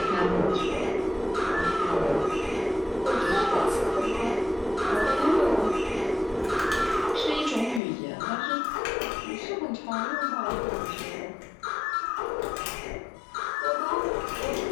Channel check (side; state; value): right; drops out; at 7.8 s